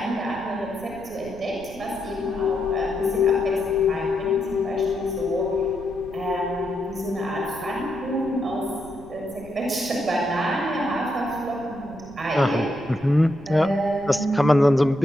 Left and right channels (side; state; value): right; noise; rumble, 19 dB below the sound